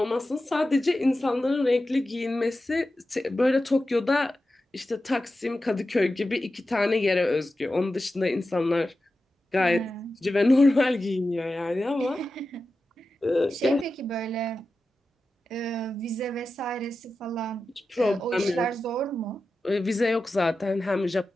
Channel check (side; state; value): both; normal; correlation 0.92